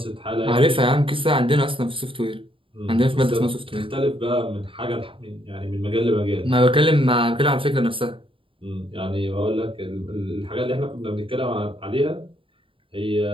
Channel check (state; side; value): late; left; 0.25 ms